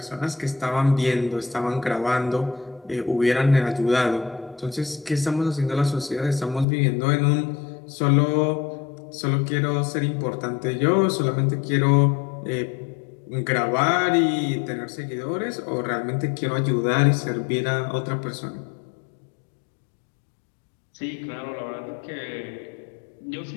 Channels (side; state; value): right; drops out; at 6.7 s